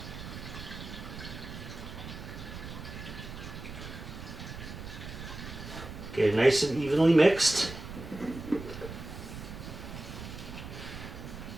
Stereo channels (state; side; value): noise; right; rumble, 10 dB below the sound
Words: Okay, nice and evenly mixed.